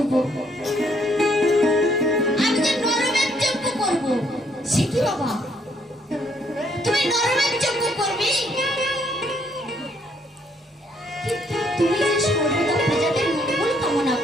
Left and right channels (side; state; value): both; normal; correlation 0.69